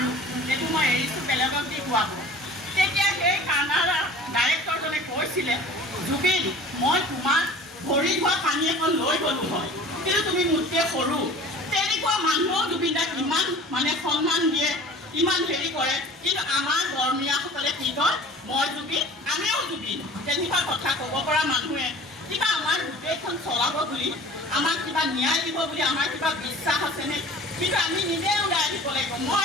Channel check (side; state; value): both; normal; correlation 0.44